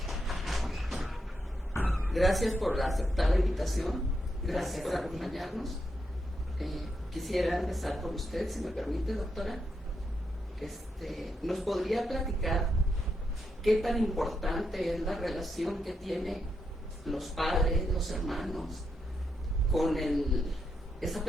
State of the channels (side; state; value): both; normal; correlation 0.82